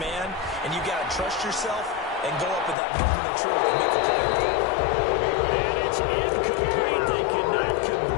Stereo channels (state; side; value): drops out; right; at 2.8 s